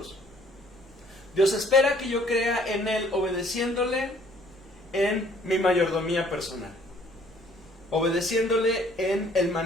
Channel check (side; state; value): both; normal; correlation 0.59